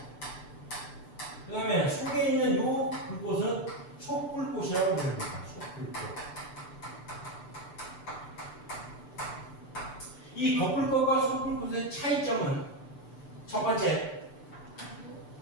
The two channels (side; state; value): right; late; 6.8 ms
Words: 그 다음에 속에 있는 요 불꽃은 속불꽃이라고 부릅니다. 속불꽃. 이 겉불꽃과 속불꽃의 차이점은 첫 번째